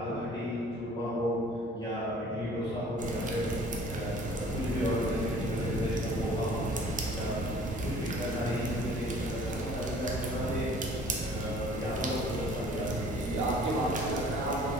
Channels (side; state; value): both; normal; correlation 0.52